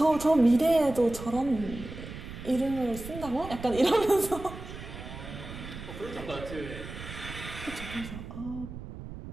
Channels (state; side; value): noise; right; rumble, 11 dB below the sound